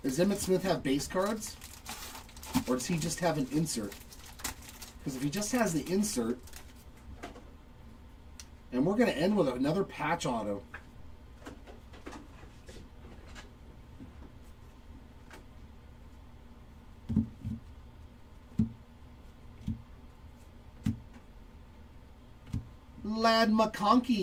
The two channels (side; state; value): both; identical; correlation 1.00